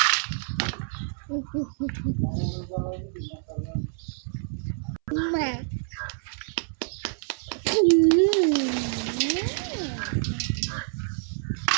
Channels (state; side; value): silent; left; 60 dB below the other